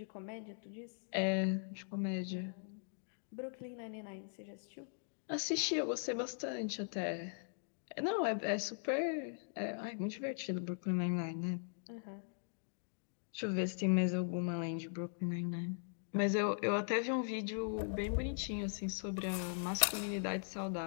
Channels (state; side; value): silent; right; digital silence